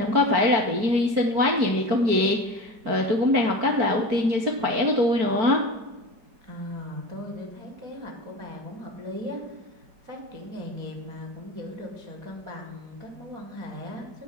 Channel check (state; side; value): late; left; 4.5 ms